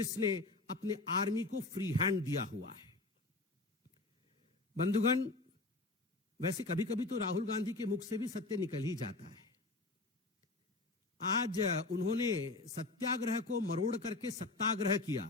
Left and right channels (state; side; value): quieter; right; 3.2 dB